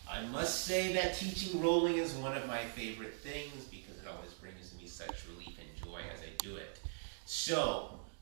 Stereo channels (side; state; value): left; silent; digital silence